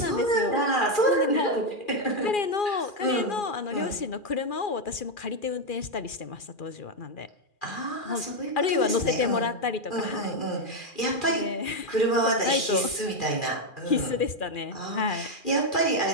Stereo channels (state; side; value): late; right; 2.4 ms